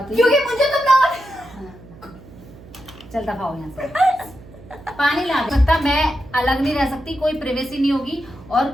हुई? क्योंकि मुझे तुम ना हाँ। चल दफा हो यहाँ से। पानी ला सकता, मैं अलग नहीं रह सकती, कोई प्राइवेसी नहीं होगी। और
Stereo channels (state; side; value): noise; right; hum, 20 dB below the sound